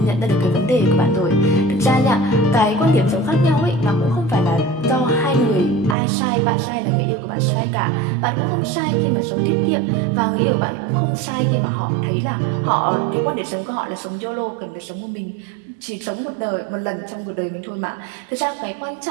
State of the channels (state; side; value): drops out; left; at 6.0 s